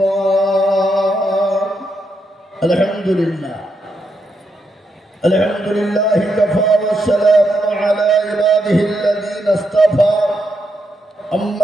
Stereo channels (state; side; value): normal; both; correlation 0.81